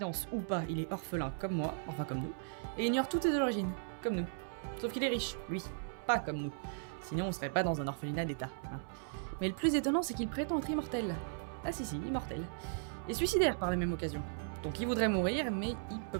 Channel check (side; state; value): left; silent; 53 dB below the other